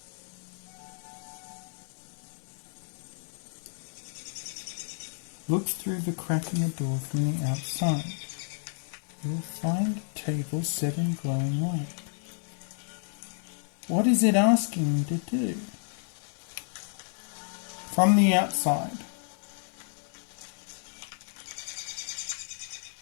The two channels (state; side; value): silent; right; 57 dB below the other